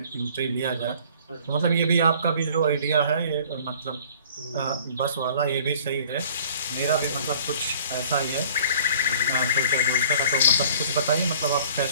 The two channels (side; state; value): both; inverted; correlation -0.51